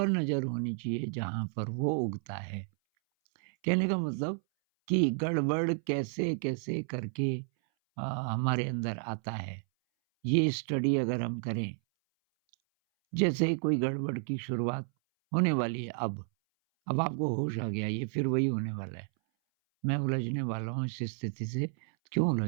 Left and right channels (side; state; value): left; silent; 57 dB below the other